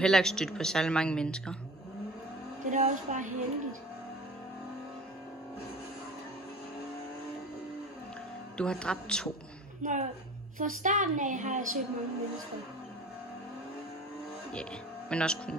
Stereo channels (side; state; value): both; normal; correlation 0.40